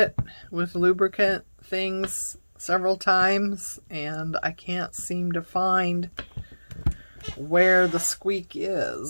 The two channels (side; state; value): both; inverted; correlation -1.00